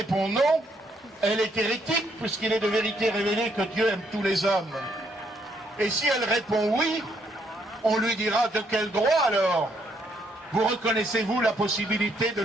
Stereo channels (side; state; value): both; normal; correlation 0.71